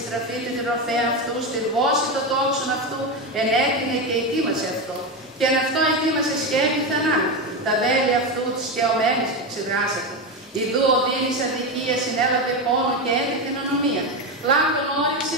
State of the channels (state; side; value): normal; both; correlation 0.14